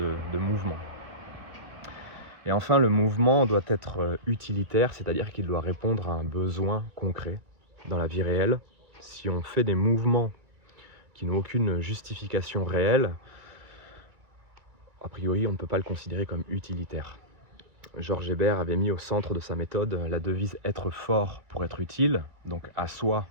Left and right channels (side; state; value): left; late; 2.1 ms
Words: mouvement. Et enfin, le mouvement doit être utilitaire, c'est-à-dire qu'il doit répondre à un besoin concret dans la vie réelle. Si on fait des mouvements qui n'ont aucune justification réelle, a priori, on ne peut pas le considérer comme utilitaire. Georges Hébert avait mis au centre de sa méthode la devise « être fort pour être utile », donc à soi,